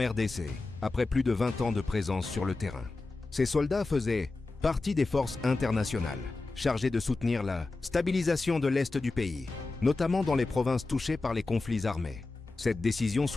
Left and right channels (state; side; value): quieter; right; 3.4 dB